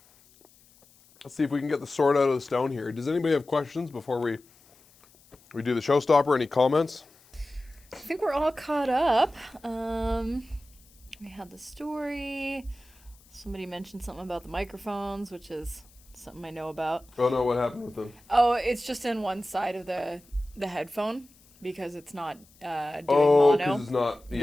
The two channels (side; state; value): left; noise; hiss, 28 dB below the sound